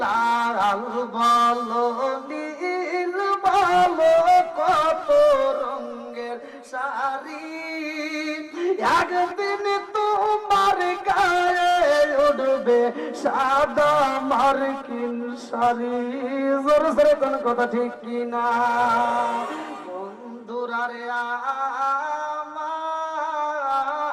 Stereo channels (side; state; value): both; identical; correlation 1.00